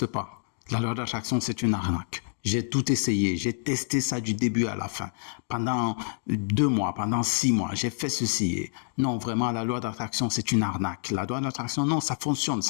pas. La loi d'attraction, c'est une arnaque. J'ai tout essayé. J'ai testé ça du début à la fin. Pendant 2 mois, pendant 6 mois, j'ai fait ceci. Non, vraiment, la loi d'attraction, c'est une arnaque. La loi d'attraction, non, ça fonctionne.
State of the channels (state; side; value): silent; right; digital silence